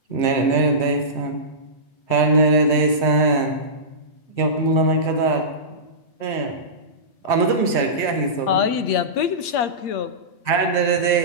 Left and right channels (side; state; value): right; late; 8.5 ms